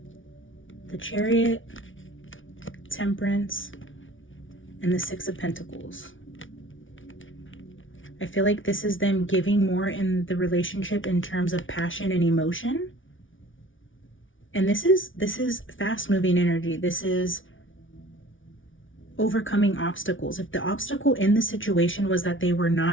the Chariot, Temperance, and the Six of Pentacles. I feel like this is them giving more in the relationship in terms of passion and emotion. And this is fast moving energy. This is overcoming obstacles. If the obstacle in the situation was that they were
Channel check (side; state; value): right; late; 0.57 ms